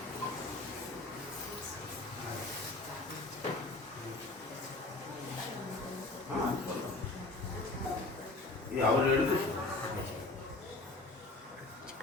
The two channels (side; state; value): right; quieter; 3.1 dB